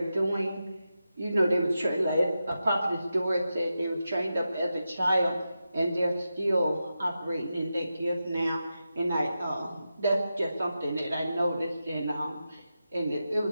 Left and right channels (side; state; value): both; inverted; correlation -0.90